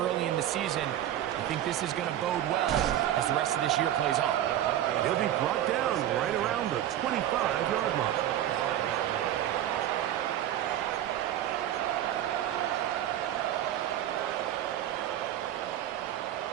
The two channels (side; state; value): left; quieter; 12.1 dB